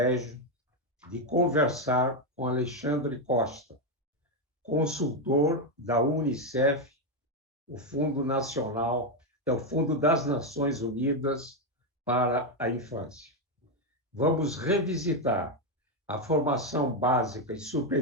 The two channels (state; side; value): normal; both; correlation 0.06